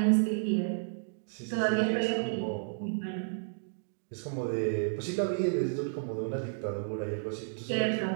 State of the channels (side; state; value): left; silent; digital silence